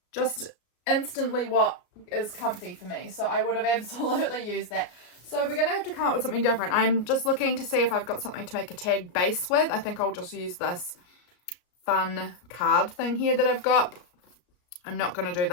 just instantly what is comfy for me. So I would have absolutely used that. So we're going to have to come up with something different. I'm just looking to see if I've got something to make a tag base with. I think I'll just use this fun card thing here that I've got. I'm not going to do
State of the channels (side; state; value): right; late; 34 ms